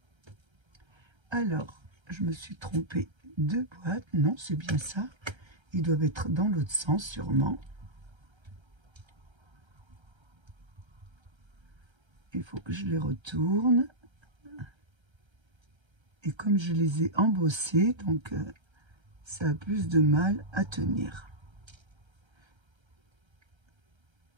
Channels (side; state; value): left; late; 1.3 ms